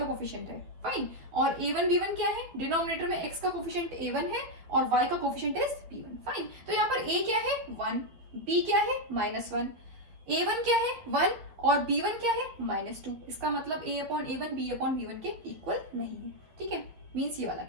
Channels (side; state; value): left; late; 12 ms